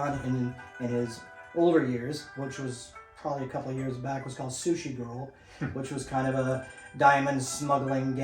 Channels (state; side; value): identical; both; correlation 1.00